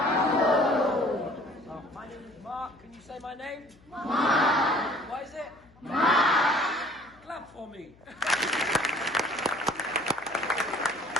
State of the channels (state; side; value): noise; left; hum, 28 dB below the sound